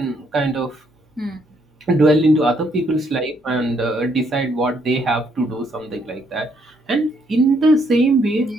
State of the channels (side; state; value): both; normal; correlation 0.71